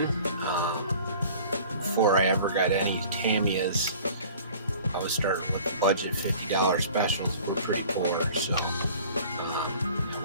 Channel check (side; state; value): both; inverted; correlation -0.46